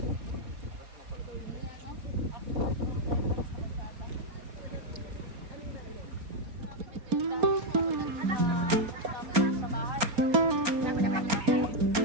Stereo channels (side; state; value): left; late; 4.3 ms